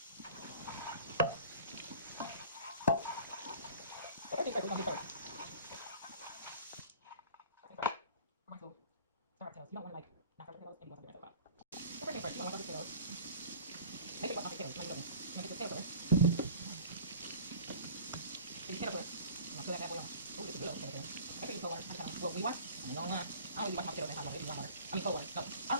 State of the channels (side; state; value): both; inverted; correlation -0.43